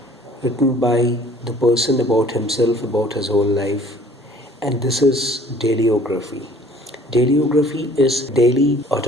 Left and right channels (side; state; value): both; normal; correlation 0.53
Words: written by the person about himself, about his whole life. And this is dailyography. Dailyography is daily